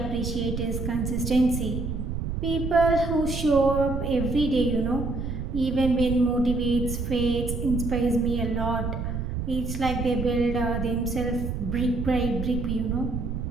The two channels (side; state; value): right; noise; rumble, 4 dB below the sound